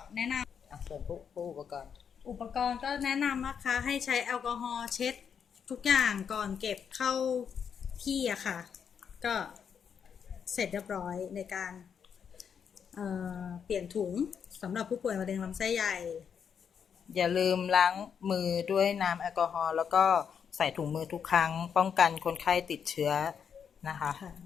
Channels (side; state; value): right; quieter; 7.3 dB